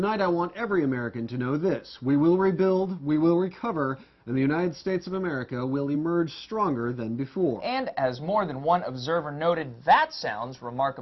I want every American to know this: we will rebuild, we will recover, and the United States of America will emerge stronger than before. And as more than one observer noted, that sounds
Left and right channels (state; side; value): identical; both; correlation 1.00